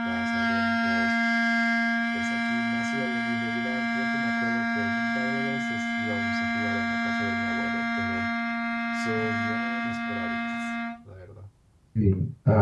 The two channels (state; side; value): identical; both; correlation 1.00